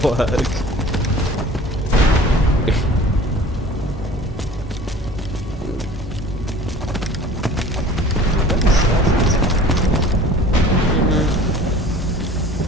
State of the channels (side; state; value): both; normal; correlation 0.45